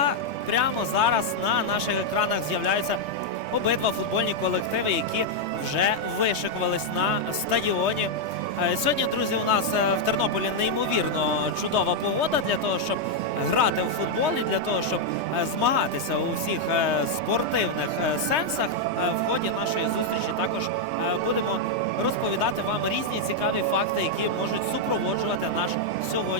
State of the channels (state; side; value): late; left; 3.2 ms